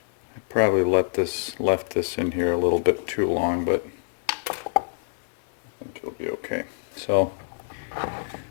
I probably left this in here a little bit too long, but I think it'll be okay. So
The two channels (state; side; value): silent; right; digital silence